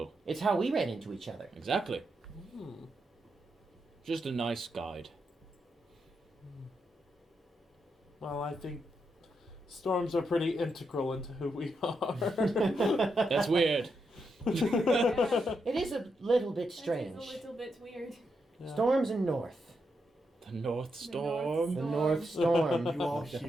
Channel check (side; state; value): both; normal; correlation 0.83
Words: It's how we ran into each other. Exactly. Hmm. Just a nice guide. Well, I think storms are pretty integral into who we are. That's weird. It is a little bit strange. That is a little bit weird. Yeah. Storms and north. The North Storm. The North Storm. You all